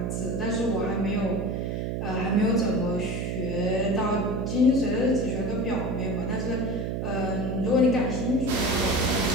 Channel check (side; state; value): right; noise; hum, 2 dB below the sound